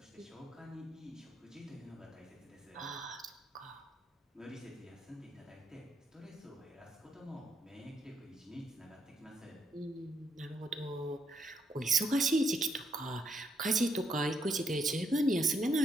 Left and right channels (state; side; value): normal; both; correlation 0.75